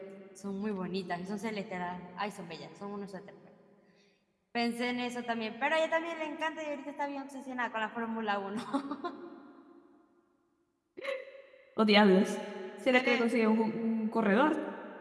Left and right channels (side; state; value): both; identical; correlation 1.00